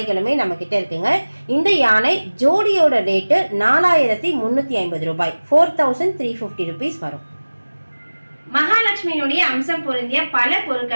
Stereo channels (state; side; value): inverted; both; correlation -1.00